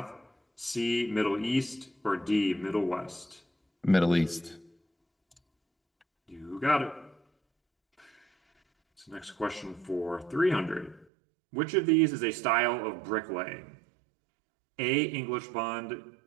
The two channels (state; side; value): drops out; left; at 11.1 s